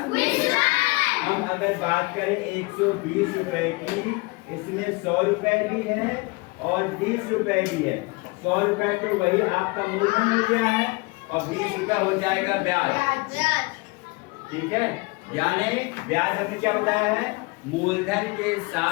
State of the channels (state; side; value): quieter; right; 26.1 dB